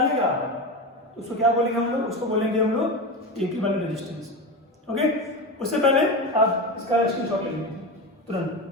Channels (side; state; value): both; normal; correlation 0.22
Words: तो उसको क्या बोलेंगे हम लोग, उसको बोलेंगे हम लोग इक्विवेलेंट रेजिस्टेंस। ओके, उससे पहले आप इसका स्क्रीनशॉट ले लीजिए तुरंत।